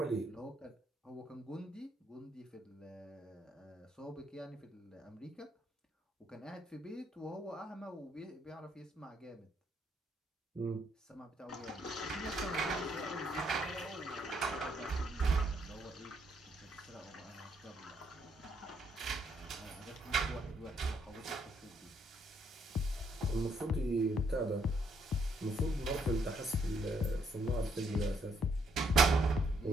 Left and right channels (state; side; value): normal; both; correlation 0.72